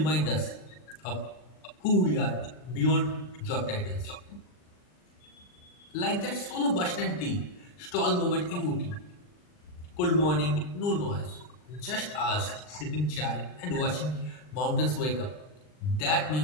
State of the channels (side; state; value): right; late; 39 ms